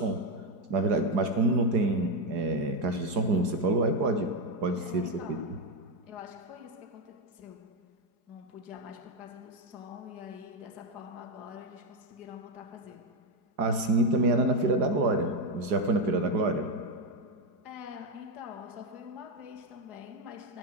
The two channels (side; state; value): left; late; 4.8 ms